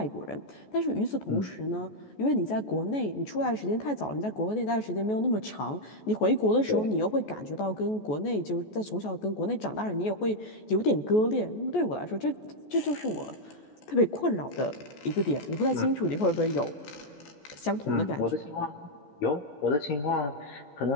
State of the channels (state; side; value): late; right; 14 ms